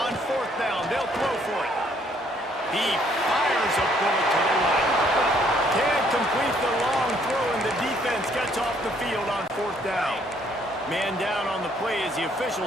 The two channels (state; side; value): normal; both; correlation 0.65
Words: On fourth down, they'll throw for it. He fires a bullet to the right. Can't complete the long throw, and the defense gets off the field on fourth down. Man down on the play as the